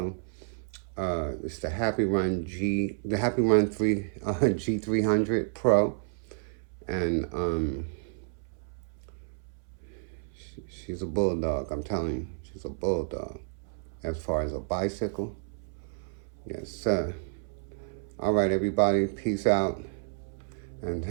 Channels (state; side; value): silent; left; 58 dB below the other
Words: It's the Happyrun G300 Pro. And she's a bulldog, I'm telling you. She's a bulldog. As far as a bicycle. Yes, sir. All right, everybody. Peace out. And